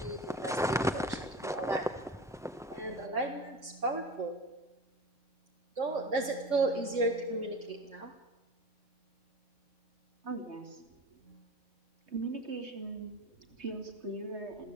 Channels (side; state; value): both; normal; correlation 0.34